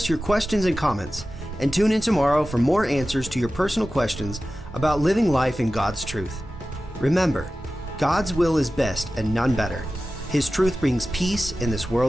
your questions and comments, and tune in tomorrow for more answers to your personal questions about living life in God's truth. Remember, God's will is best and none better. His truth brings peace in this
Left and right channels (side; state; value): both; normal; correlation 0.95